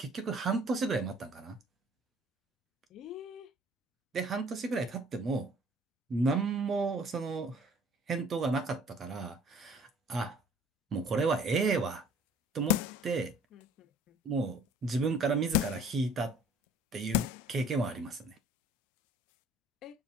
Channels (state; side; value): normal; both; correlation 0.53